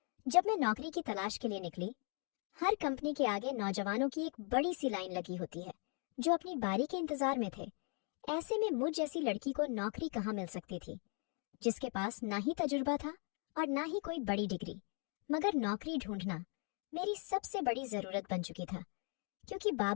जब मैं नौकरी की तलाश के लिए निकली। हर कंपनी के आगे नौजवानों की एक बड़ी सी लाइन लगी होती है जो अपनी बारी के इंतजार में थे। ऐसे में मुझ जैसी लड़की को नौकरी कहाँ मिल सकती थी, जिसके पास ना ही तजुर्बा था और ना ही कोई बड़ी डिग्री। मगर नौकरी ढूंढना मेरी सबसे बड़ी जरूरत बन चुकी था, क्योंकि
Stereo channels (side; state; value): right; quieter; 40.0 dB